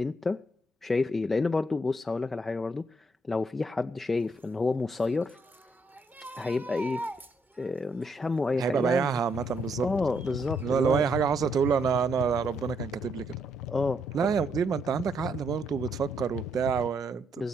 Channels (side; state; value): both; normal; correlation 0.75